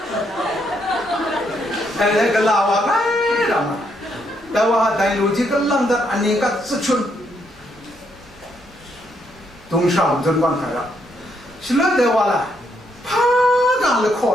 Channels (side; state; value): both; normal; correlation 0.75